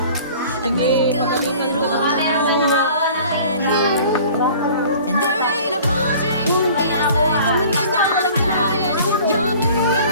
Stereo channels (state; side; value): inverted; both; correlation -0.47